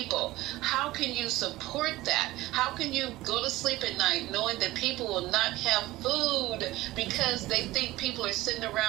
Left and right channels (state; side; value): quieter; left; 17.7 dB